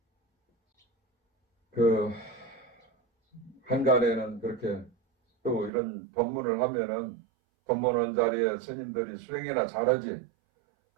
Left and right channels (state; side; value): drops out; left; at 5.7 s